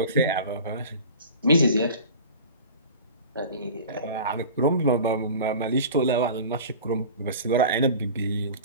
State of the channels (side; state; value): both; inverted; correlation -0.37